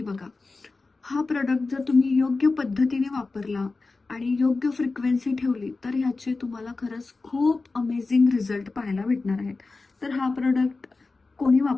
बघा. हा प्रोडक्ट जर तुम्ही योग्य पद्धतीने वापरला आणि योग्य फ्रिक्वेन्सी ठेवली तर ह्याचे तुम्हाला खरंच खूप अमेझिंग रिझल्ट पाहायला भेटणार आहेत. तर हा प्रोडक्ट कोणी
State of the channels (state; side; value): quieter; right; 3.7 dB